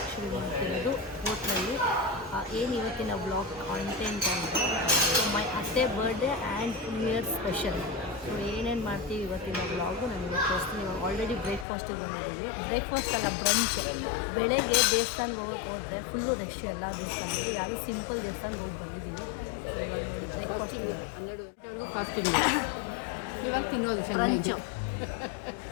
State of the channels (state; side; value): drops out; right; at 11.7 s